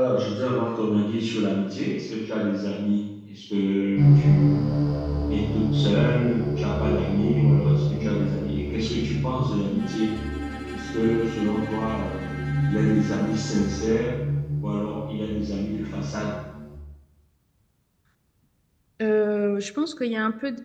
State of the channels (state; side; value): identical; both; correlation 1.00